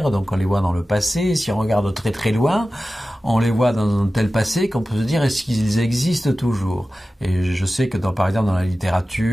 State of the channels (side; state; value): both; normal; correlation 0.95